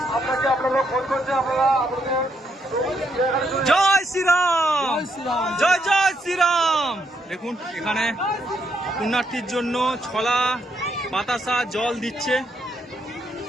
জয় শ্রীরাম, জয় জয় শ্রীরাম। দেখুন এখানে পুণ্যার্থীর জন্য ছলা, বাতাসা, জল দিচ্ছে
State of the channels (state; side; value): normal; both; correlation 0.76